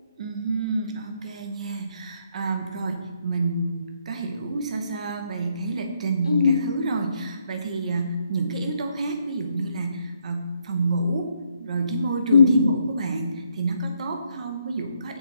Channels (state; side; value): inverted; both; correlation -0.73